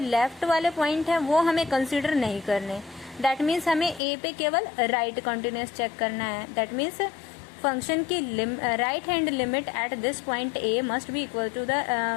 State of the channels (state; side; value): drops out; right; at 4.0 s